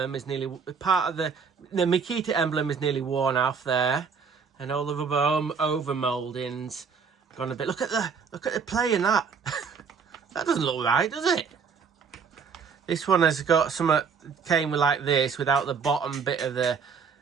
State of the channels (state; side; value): quieter; left; 6.0 dB